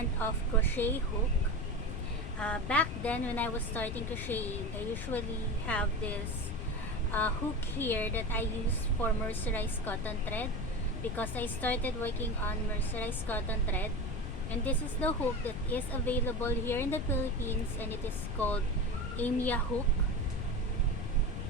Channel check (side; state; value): left; noise; rumble, 5 dB below the sound